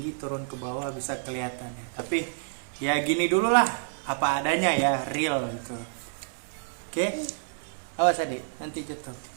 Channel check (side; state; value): left; silent; digital silence